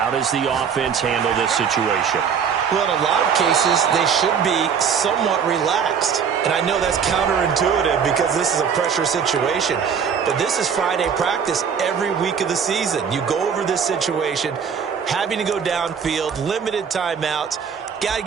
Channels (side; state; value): left; quieter; 7.0 dB